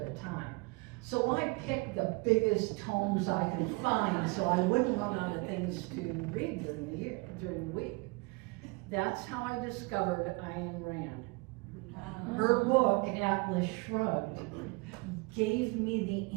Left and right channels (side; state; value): left; quieter; 27.2 dB